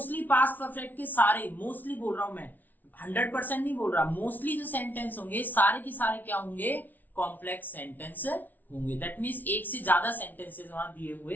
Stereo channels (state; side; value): late; right; 0.082 ms